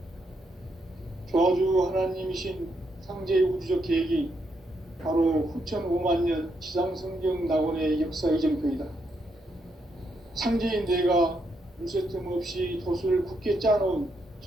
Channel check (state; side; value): normal; both; correlation 0.79